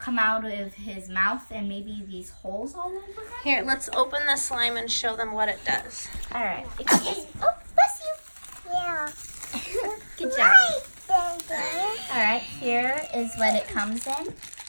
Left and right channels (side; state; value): both; inverted; correlation -1.00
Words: out of his mouth and maybe these holes all over him. Here, let's open the slime and show them what it does. All right. Oh, bless you. Yeah. Good job. All right, here is what it comes in.